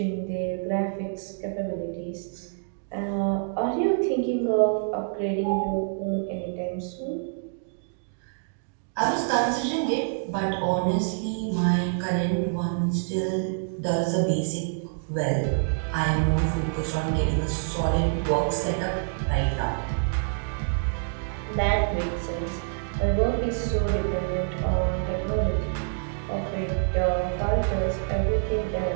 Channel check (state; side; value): silent; left; digital silence